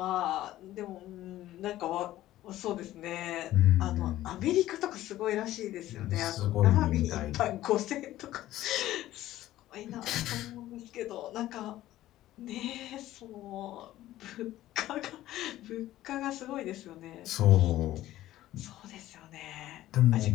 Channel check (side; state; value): right; quieter; 14.6 dB